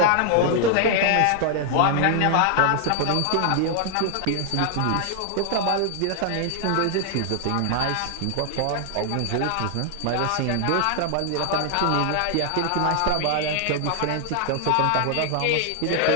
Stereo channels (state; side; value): different; both; correlation 0.00